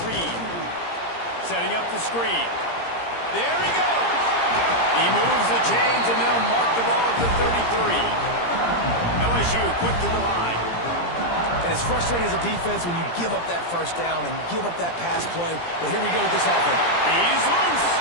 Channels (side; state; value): right; late; 17 ms